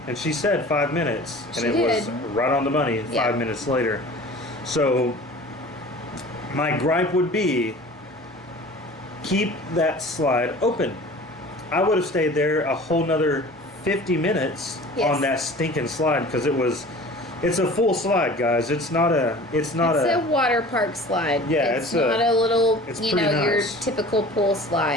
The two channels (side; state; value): both; normal; correlation 0.42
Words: and she said 5 minutes, and it was right on the money 5 minutes later. So my gripe would be, keep that slide open. I would have stayed there a whole nother 50 minutes on that stinking slide, because it's a full slide, guys. It's a water park slide. Yeah, it's not a little, you know, nice. your typical pool